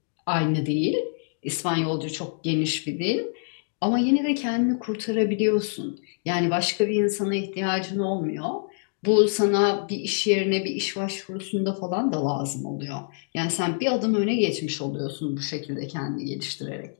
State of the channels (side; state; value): right; silent; digital silence